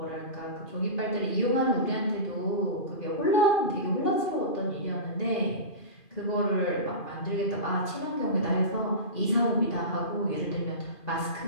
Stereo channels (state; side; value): late; right; 2.5 ms